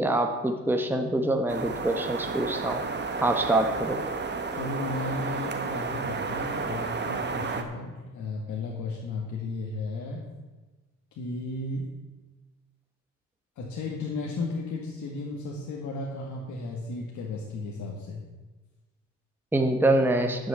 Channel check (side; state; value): both; normal; correlation 0.49